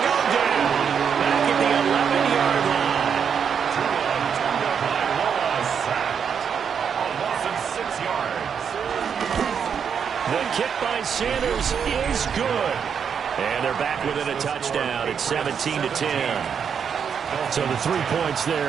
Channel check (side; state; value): left; quieter; 7.2 dB